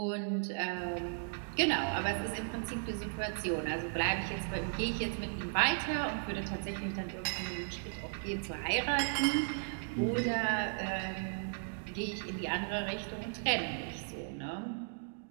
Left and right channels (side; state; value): left; silent; digital silence